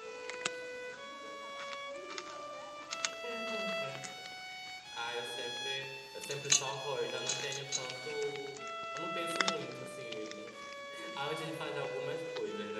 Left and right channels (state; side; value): identical; both; correlation 1.00